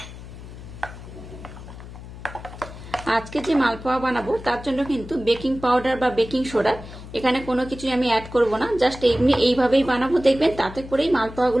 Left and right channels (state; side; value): noise; left; hum, 14 dB below the sound